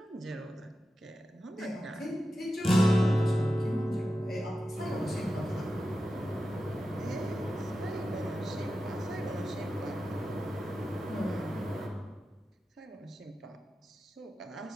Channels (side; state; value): both; normal; correlation 0.92